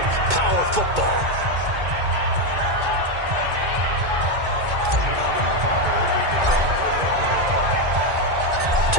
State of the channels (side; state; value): left; late; 2.2 ms